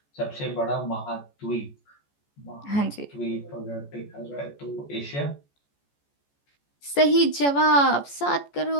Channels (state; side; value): late; right; 14 ms